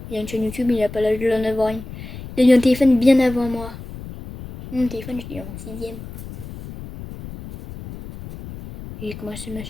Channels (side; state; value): left; noise; rumble, 12 dB below the sound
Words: Il a une chaîne YouTube, il a pas l'âge de l'en avoir une. Il a eu un téléphone bien avant moi. Mon téléphone, je l'ai eu en 6ème. J'ai commencé ma